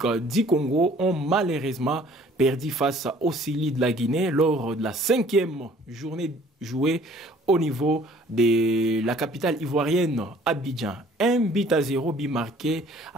du Congo ont malheureusement perdu face aux Sili de la Guinée lors de la 5e journée jouée au niveau de la capitale ivoirienne, Abidjan. 1-0, but marqué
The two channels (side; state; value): both; normal; correlation 0.55